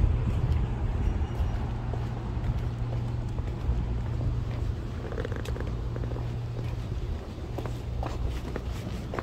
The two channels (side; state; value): both; identical; correlation 1.00